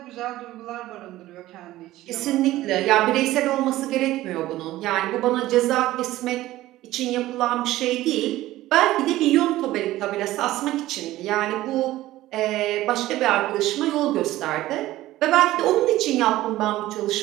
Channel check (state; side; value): quieter; left; 16.0 dB